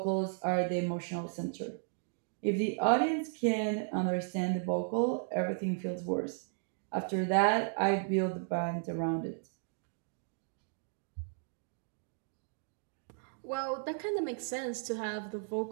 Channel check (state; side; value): silent; left; digital silence